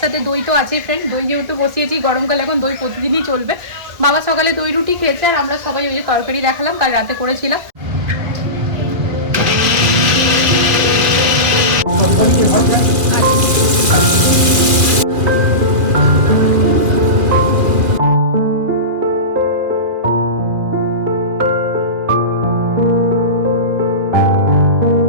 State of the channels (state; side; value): late; left; 2.6 ms